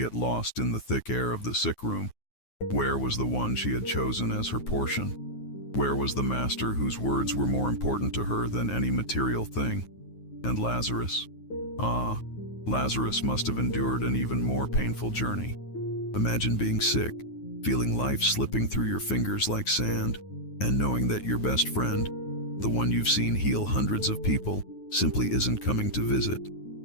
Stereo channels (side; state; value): right; late; 9.4 ms